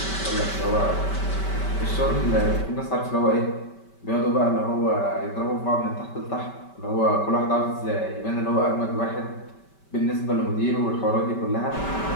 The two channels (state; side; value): late; right; 5.2 ms